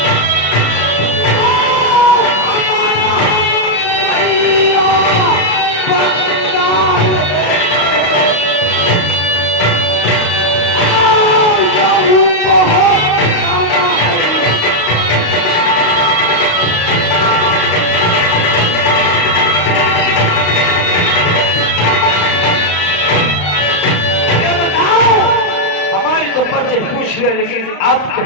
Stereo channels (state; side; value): late; right; 35 ms